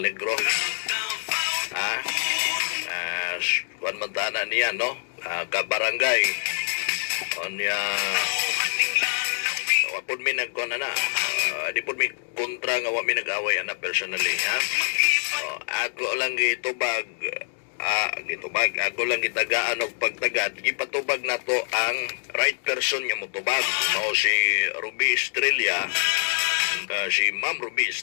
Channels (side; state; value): right; silent; 58 dB below the other